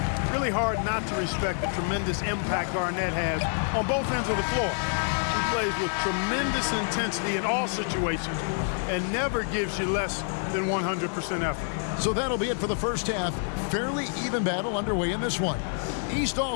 Really hard not to respect the tremendous impact Garnett has on both ends of the floor. He plays with tremendous intensity in all situations and never gives you less than 100% effort. So that'll be it for the first half. Fairly even battle underway in this one. East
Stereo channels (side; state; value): right; silent; 60 dB below the other